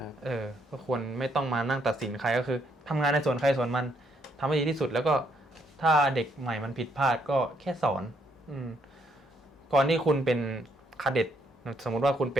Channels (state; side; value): normal; both; correlation 0.72